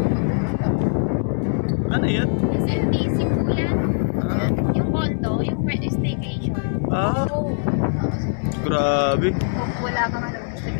Ano yan? SMTC po yan. Yung condo, yung pwede staycation. Grabe. Wala ka nga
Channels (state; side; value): silent; right; digital silence